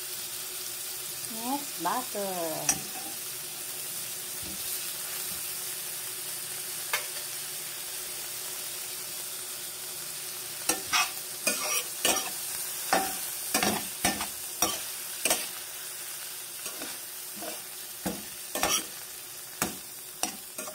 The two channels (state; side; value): identical; both; correlation 1.00